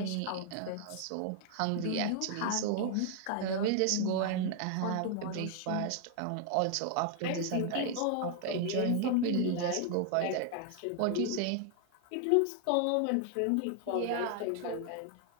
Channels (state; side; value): different; both; correlation 0.00